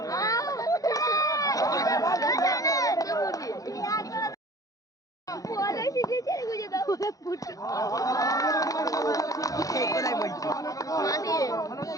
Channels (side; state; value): right; late; 0.17 ms